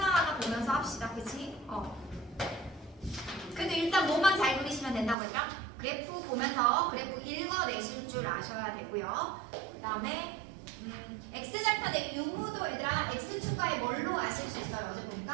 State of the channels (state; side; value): drops out; left; at 5.2 s